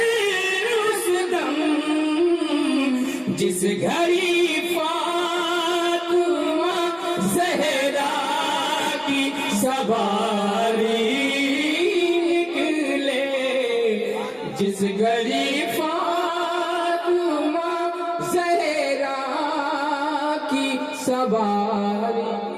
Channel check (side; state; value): both; identical; correlation 1.00